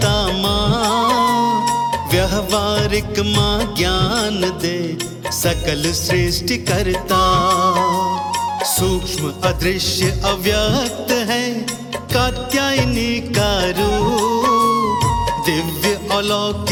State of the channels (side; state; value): both; identical; correlation 1.00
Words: माँ, व्यवहारिक माँ ज्ञान दे सकल सृष्टि करता। सूक्ष्म अदृश्य अव्यक्त है कात्यायनी का रूप, दिव्य